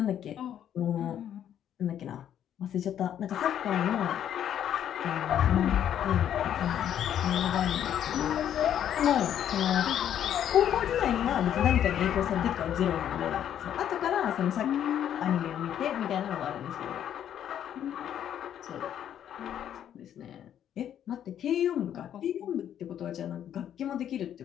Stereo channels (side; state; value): right; quieter; 10.1 dB